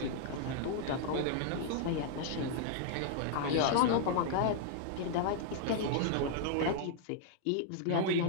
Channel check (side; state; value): both; different; correlation -0.01